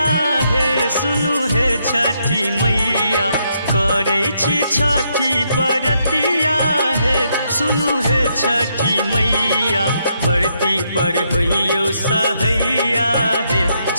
हे सुनु हे छठी मैया करे छी छठी बरतिया हे सुनु हे छठी मैया बरती पर होइयो सहैया हे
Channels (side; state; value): both; inverted; correlation -0.77